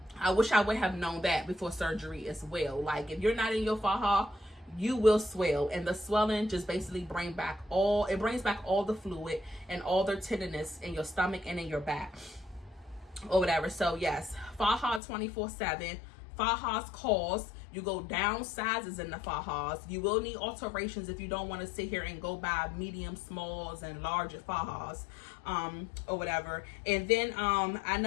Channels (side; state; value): right; drops out; at 15.0 s